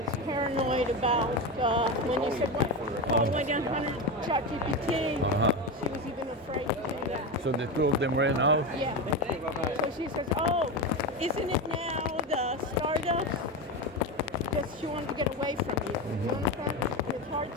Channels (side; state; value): both; normal; correlation 0.17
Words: paranoid about when you said, "Oh, went on 100 ChatGPT." She was even afraid to do that. So the two of them ran out. Yeah. So she says, "Oh, isn't it now the startups?" Because she wanted to get away from you. You understand? It's hard